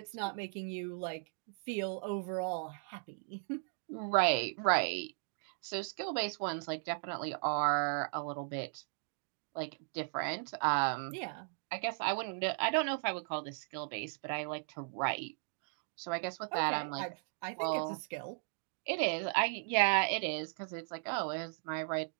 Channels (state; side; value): silent; left; digital silence